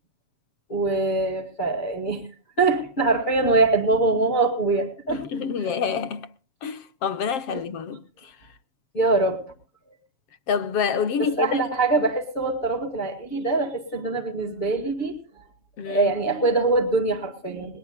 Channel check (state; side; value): late; right; 7.5 ms